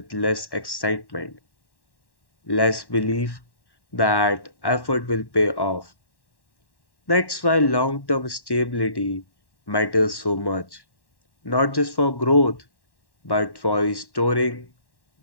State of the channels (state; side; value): late; right; 1.1 ms